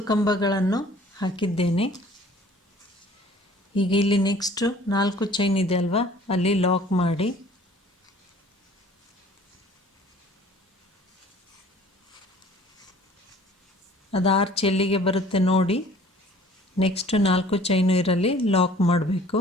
ಕಂಬಗಳನ್ನು ಹಾಕಿದ್ದೇನೆ. ಈಗ ಇಲ್ಲಿ ನೆಕ್ಸ್ಟ್ 4 ಚೈನ್ ಇದೆ ಅಲ್ವಾ, ಅಲ್ಲಿ ಲಾಕ್ ಮಾಡಿ ಅದು ಆರ್ಚ್ ಎಲ್ಲಿಗೆ ಬರುತ್ತೆ ನೋಡಿ. ನೆಕ್ಸ್ಟ್ 4 ಚೈನು ಇರಲಿ ಲಾಕ್ ಮಾಡಬೇಕು.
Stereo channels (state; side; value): normal; both; correlation 0.51